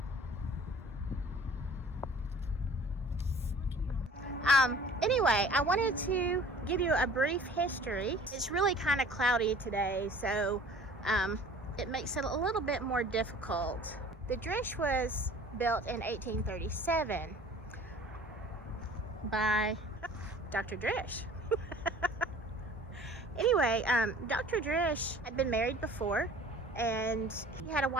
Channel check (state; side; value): normal; both; correlation 0.48